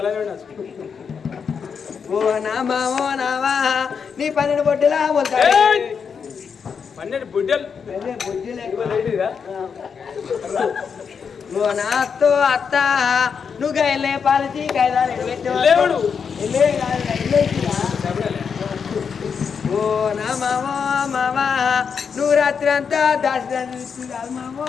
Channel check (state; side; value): quieter; right; 6.3 dB